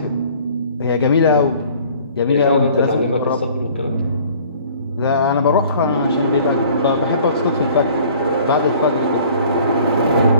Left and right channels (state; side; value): inverted; both; correlation -0.52